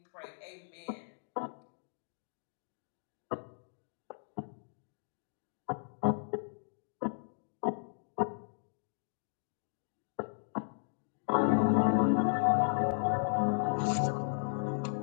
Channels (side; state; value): right; silent; digital silence